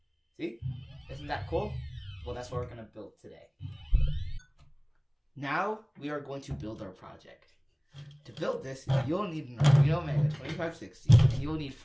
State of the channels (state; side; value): identical; both; correlation 1.00